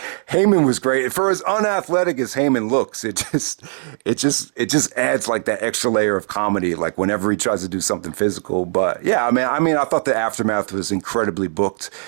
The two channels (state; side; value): silent; left; digital silence